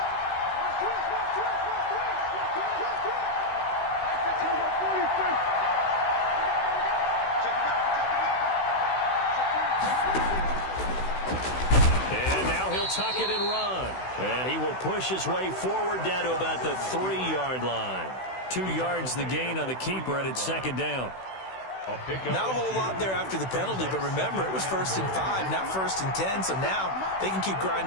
And now he'll tuck it and run. And he will push his way forward down to about the 3-yard line. 2 yards the gain on the keeper, and it's second down. Not a whole lot there after the penalty, but remember, it was 1st and 5, not 1st and 10, so now they can keep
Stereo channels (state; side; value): late; right; 16 ms